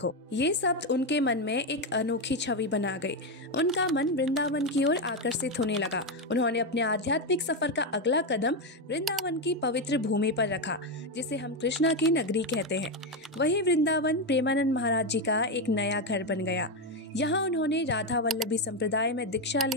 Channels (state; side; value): normal; both; correlation 0.09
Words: ये शब्द उनके मन में एक अनोखी छवि बना गए। उनका मन वृंदावन की ओर आकर्षित होने लगा। उन्होंने अपने आध्यात्मिक सफर का अगला कदम वृंदावन की पवित्र भूमि पर रखा, जिसे हम कृष्णा की नगरी कहते हैं। वही वृंदावन प्रेमानंद महाराज जी का एक नया घर बन गया। यहाँ उन्होंने राधा वल्लभी संप्रदाय में दीक्षा